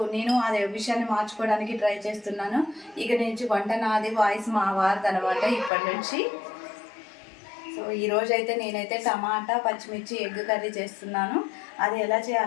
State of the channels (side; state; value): right; drops out; at 5.7 s